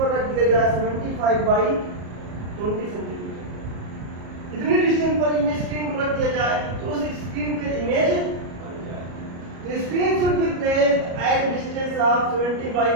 रख दिया जाए 75/20 सेंटीमीटर, इतनी डिस्टेंस पर इमेज स्क्रीन को रख दिया जाए तो उस स्क्रीन पे इमेज बन जाए। तो screen should be placed at distance of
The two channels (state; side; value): late; left; 33 ms